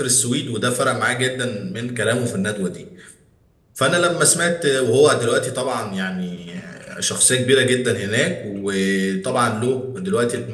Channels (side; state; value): both; identical; correlation 1.00